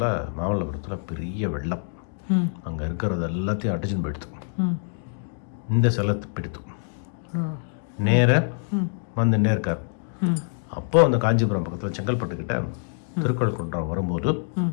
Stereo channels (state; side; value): silent; right; 61 dB below the other